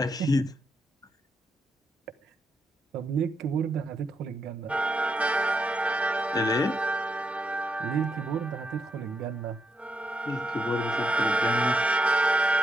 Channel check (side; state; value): both; normal; correlation 0.80